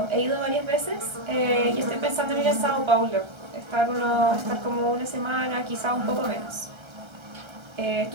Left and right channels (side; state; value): left; late; 1.3 ms